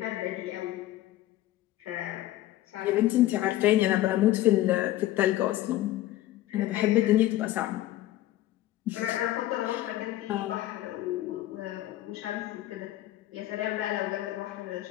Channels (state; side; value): quieter; right; 15.0 dB